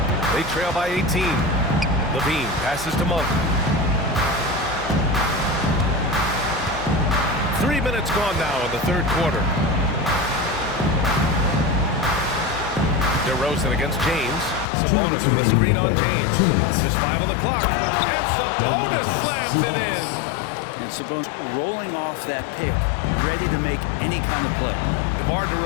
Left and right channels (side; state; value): right; drops out; at 14.7 s